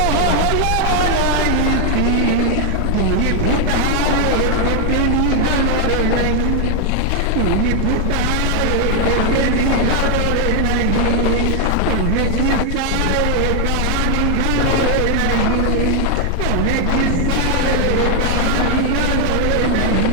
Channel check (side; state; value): both; different; correlation 0.00